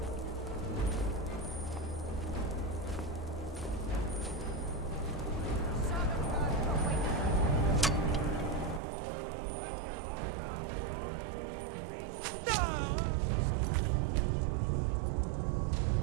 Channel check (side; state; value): left; drops out; at 8.8 s